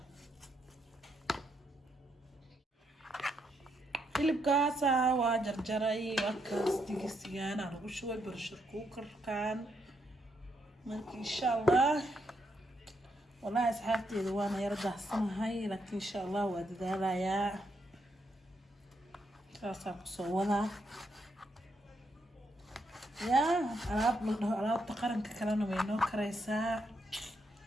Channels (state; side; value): normal; both; correlation 0.78